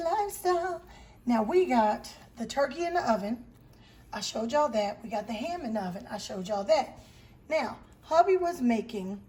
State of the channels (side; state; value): both; identical; correlation 1.00